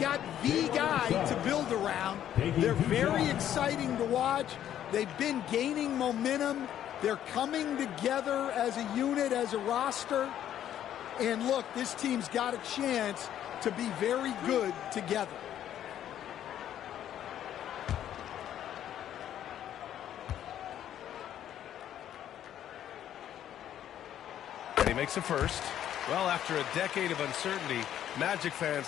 the guy to build around. They're very exciting to watch. They've been gaining momentum. They're coming together as a unit, as a roster. And look, this team's got a chance to be very good together. And he makes a first. Well, after a decade of uncertainty, Magic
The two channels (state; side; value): quieter; right; 10.9 dB